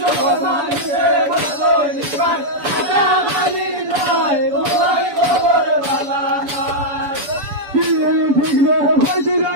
মানুষে না তৈবা কাটা গালির চাই সবাই খবর বালা নাই ঠিক রে হইতে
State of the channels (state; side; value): late; left; 7.0 ms